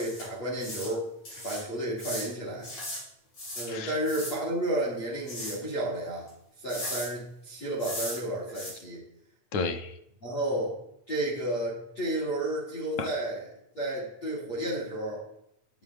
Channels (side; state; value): right; late; 8.8 ms